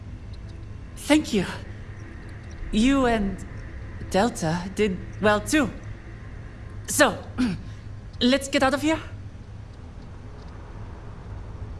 Thank you. You and Delta did well too. So, let's get out of here.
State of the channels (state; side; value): identical; both; correlation 1.00